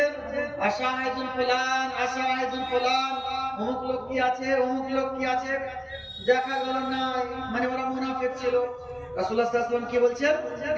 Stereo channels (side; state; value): both; identical; correlation 1.00